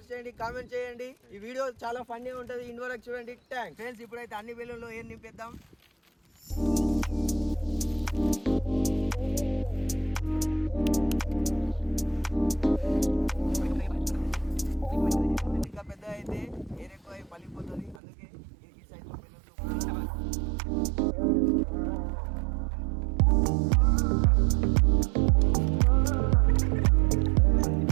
చేయండి, కామెంట్ చేయండి. ఈ వీడియో చాలా ఫన్నీ ఉంటుంది, ఎండ్ వరకు చూడండి. Thanks friends. ఇప్పుడైతే అన్ని బెలూన్లో ఏం నింపేద్దాం. ఇంకా పెద్ద అయితే ఎయిర్ ఎక్కువ పలిపోతుంది, అందుకే ఈ సైజ్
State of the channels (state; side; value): drops out; left; at 18.0 s